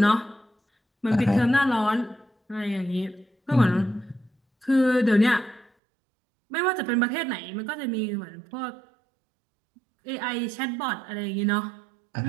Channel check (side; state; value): left; drops out; at 5.7 s